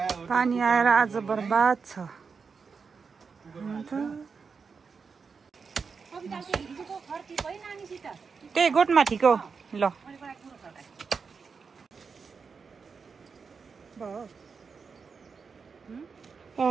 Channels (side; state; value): left; quieter; 5.3 dB